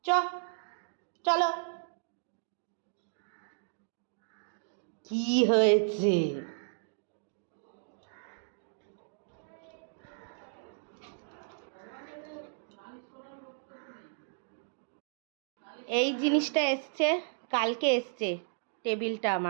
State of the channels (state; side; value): silent; left; digital silence